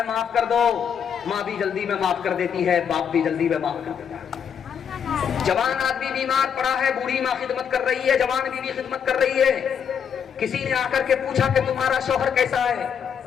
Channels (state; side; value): quieter; right; 7.7 dB